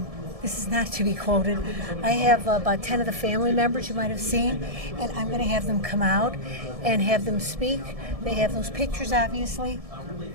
this is not to be quoted. I have about 10 of the family members you might have seen, and I'm going to have them come out and have them speak. They have those pictures, obviously.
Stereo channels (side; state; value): left; late; 1.7 ms